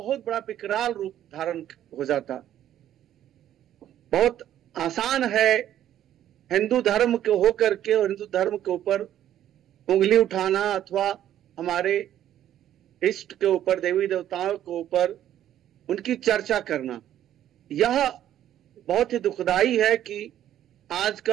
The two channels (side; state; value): left; quieter; 11.5 dB